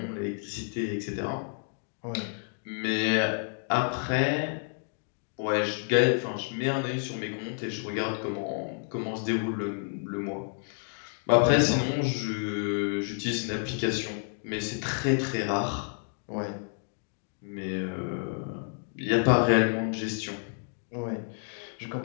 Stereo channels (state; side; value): silent; right; 58 dB below the other